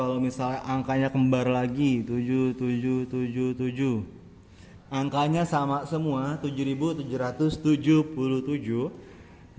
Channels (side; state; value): both; identical; correlation 1.00